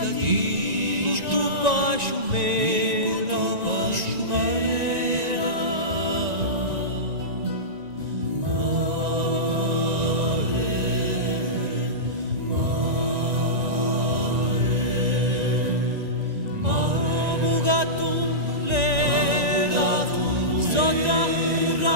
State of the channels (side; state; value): left; late; 1.9 ms